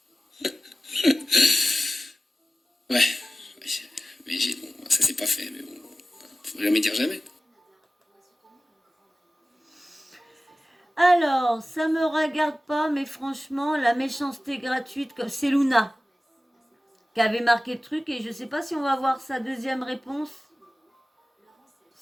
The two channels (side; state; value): both; normal; correlation 0.96